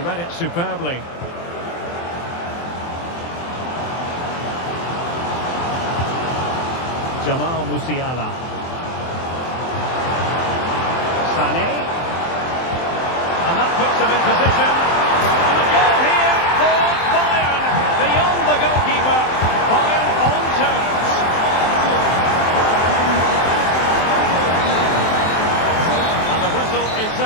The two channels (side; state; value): right; late; 23 ms